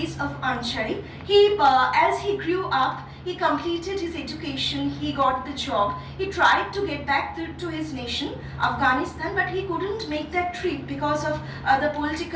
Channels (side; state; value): both; identical; correlation 1.00